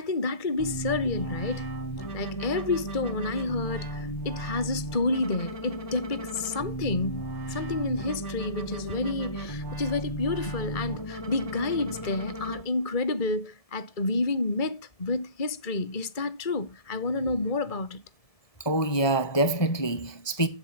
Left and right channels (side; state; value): right; late; 1.7 ms